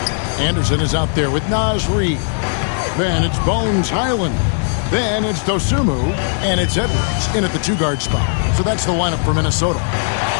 Anderson is out there with Naz Reid. Then it's Bones Highland. Then it's Dosumu. And it's Edwards in at the 2-guard spot. So that's the lineup for Minnesota.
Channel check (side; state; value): right; silent; 61 dB below the other